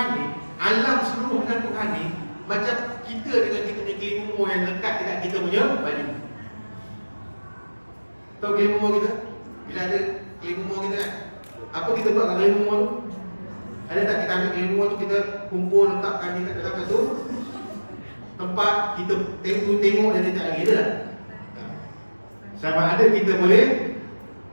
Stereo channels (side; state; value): both; inverted; correlation -1.00